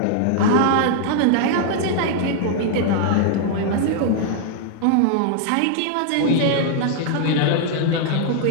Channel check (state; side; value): different; both; correlation -0.01